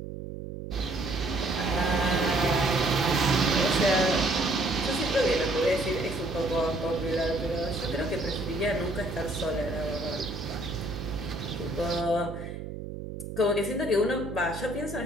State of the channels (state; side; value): noise; right; hum, 9 dB below the sound